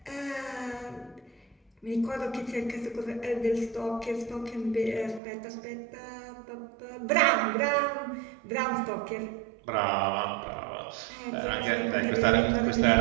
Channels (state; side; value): drops out; left; at 5.2 s